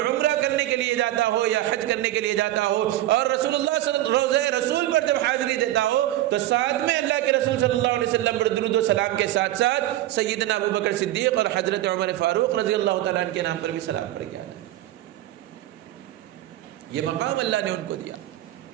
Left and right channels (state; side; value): quieter; left; 14.8 dB